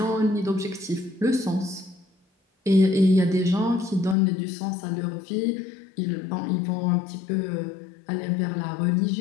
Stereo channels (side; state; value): right; drops out; at 4.2 s